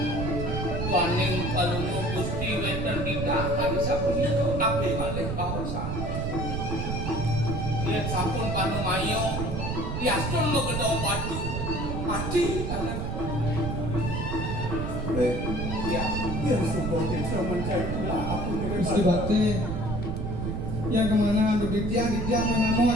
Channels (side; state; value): right; noise; rumble, 2 dB below the sound